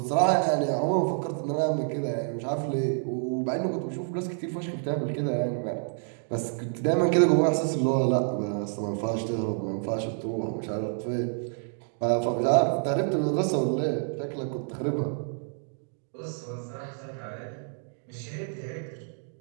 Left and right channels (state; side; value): silent; left; 59 dB below the other